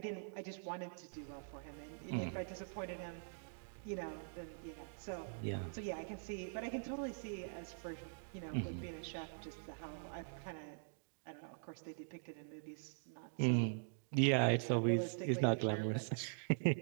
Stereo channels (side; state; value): left; silent; digital silence